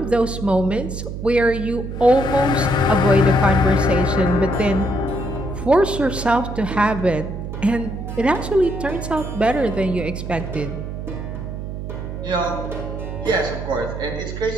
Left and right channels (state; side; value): noise; right; hum, 7 dB below the sound